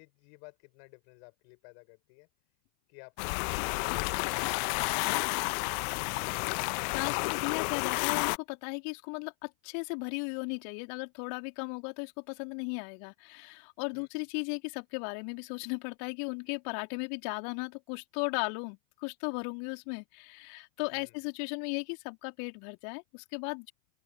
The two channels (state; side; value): silent; right; 53 dB below the other